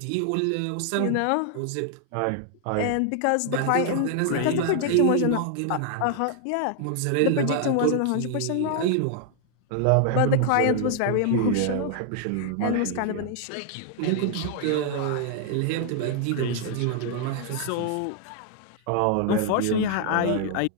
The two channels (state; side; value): different; both; correlation 0.00